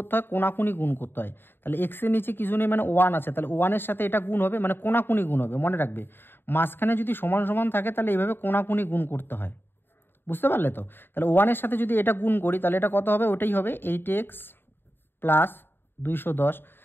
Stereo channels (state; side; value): late; right; 0.10 ms